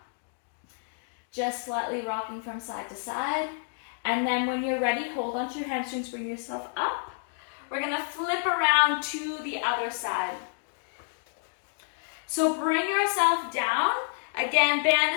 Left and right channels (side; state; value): right; silent; digital silence